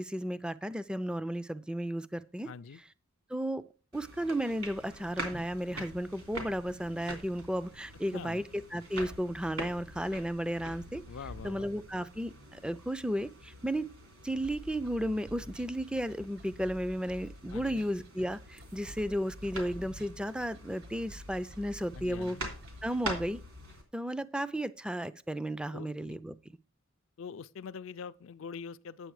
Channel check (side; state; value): both; normal; correlation 0.88